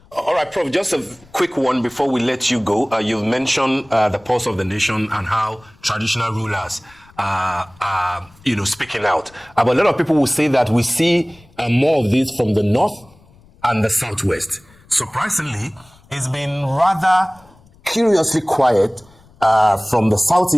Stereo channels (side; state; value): left; noise; rumble, 28 dB below the sound